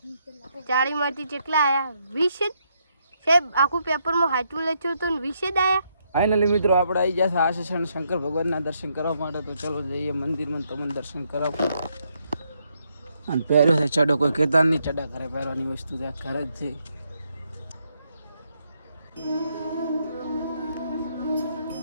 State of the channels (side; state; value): both; inverted; correlation -0.76